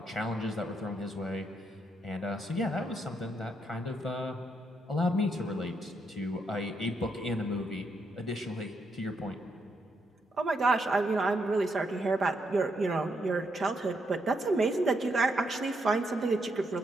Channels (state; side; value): normal; both; correlation 0.78